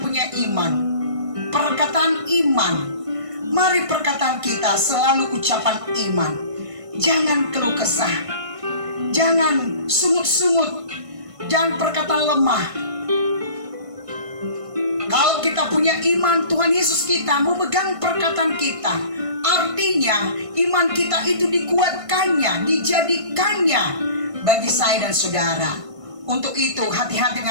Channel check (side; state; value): left; late; 1.5 ms